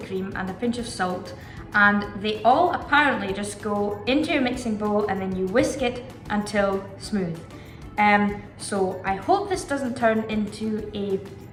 cream, and a pinch of salt. And they all apparently just go into your mixing bowl and then you whisk it until smooth. So I hope this doesn't turn into a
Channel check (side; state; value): both; identical; correlation 1.00